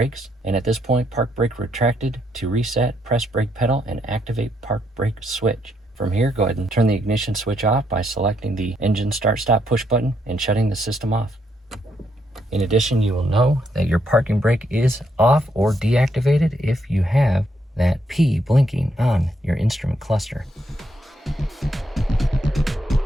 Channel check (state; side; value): normal; both; correlation 0.76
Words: And at this point, park brake retracted. To reset, press brake pedal and activate park brake switch. From here, go ahead and turn the ignition switch off by selecting the engine start stop push button and shutting the system off. In addition, you will know that your parking brake is off or deactivated if you have that P blinking on your instrument cluster.